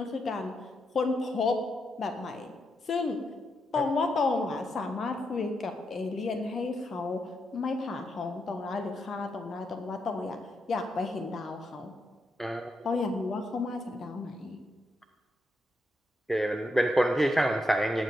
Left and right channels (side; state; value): both; normal; correlation 0.82